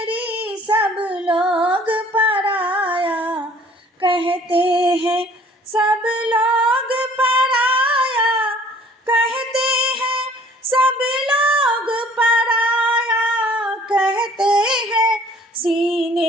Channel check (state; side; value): normal; both; correlation 0.55